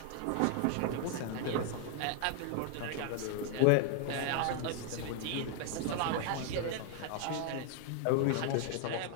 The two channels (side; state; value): both; different; correlation 0.00